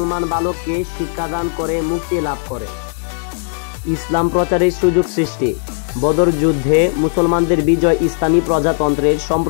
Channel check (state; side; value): silent; right; digital silence